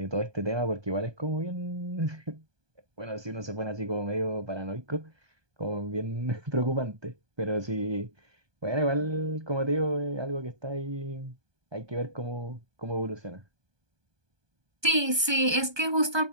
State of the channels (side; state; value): left; late; 1.2 ms